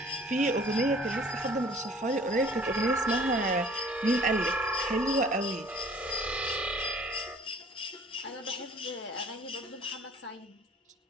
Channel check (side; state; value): both; normal; correlation 0.52